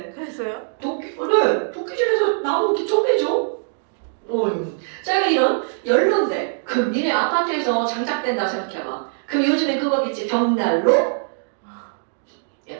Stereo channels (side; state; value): left; silent; digital silence